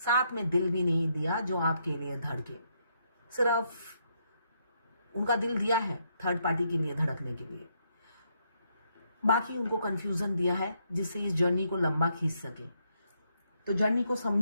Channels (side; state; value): both; inverted; correlation -0.76